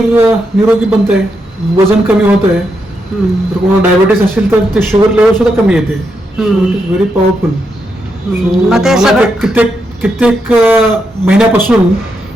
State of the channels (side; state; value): both; normal; correlation 0.82